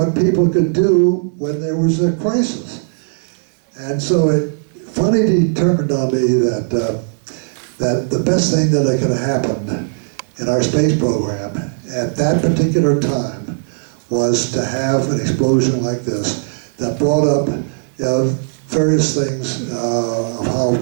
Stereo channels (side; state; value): left; silent; digital silence